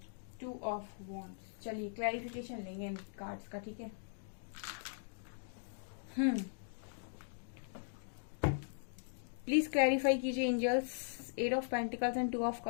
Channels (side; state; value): right; silent; digital silence